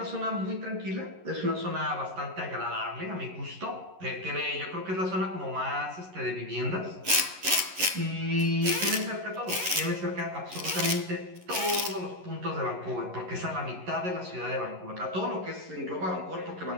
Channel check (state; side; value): late; left; 11 ms